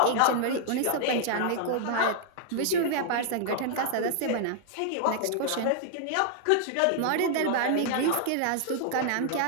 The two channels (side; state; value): both; different; correlation -0.01